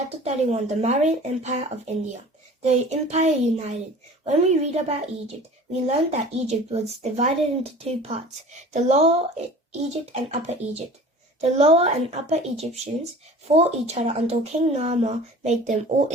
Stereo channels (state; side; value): normal; both; correlation 0.43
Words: 31, the Mauryan Empire of India. The empire united. When we read about Egypt, we learn that Egypt was divided into two parts, the Lower Egypt and Upper Egypt. The Lower and Upper Egyptians fought each other until King Narmer made them all